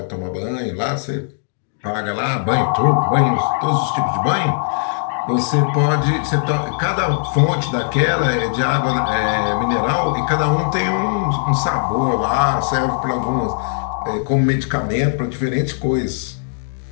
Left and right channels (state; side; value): silent; right; digital silence